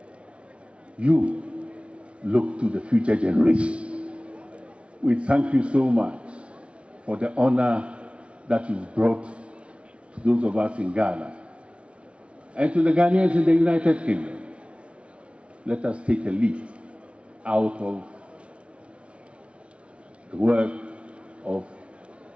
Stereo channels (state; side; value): late; left; 0.060 ms